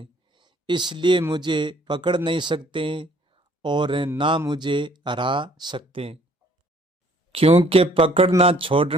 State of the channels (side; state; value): both; normal; correlation 0.59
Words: इसलिए मुझे पकड़ नहीं सकते और ना मुझे हरा सकते। क्योंकि पकड़ना